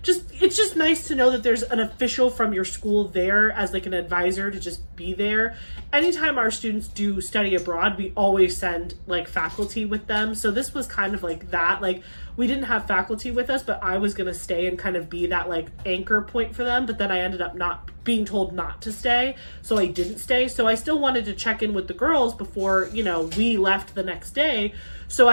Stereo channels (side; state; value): both; inverted; correlation -1.00